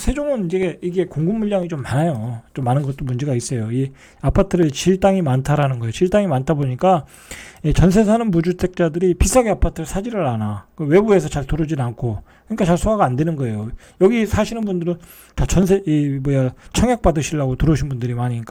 이제 이게 공급 물량이 좀 많아요. 좀 많은 것도 문제가 있어요. 이 아파트를 질 땅이 많다라는 거예요. 질 땅이 많다 보니까 전세 사는 무주택자들이 비싸게 아파트를 사지를 않아. 외부에서 잘 들어오질 않고, 그러니까 잘 소화가 안 되는 거예요. 여기 사시는 분들은 다 청약 받으시려고 들어오신 분들이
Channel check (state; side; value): identical; both; correlation 1.00